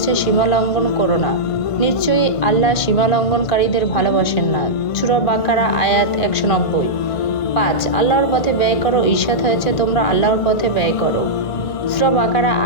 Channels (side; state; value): right; late; 1.5 ms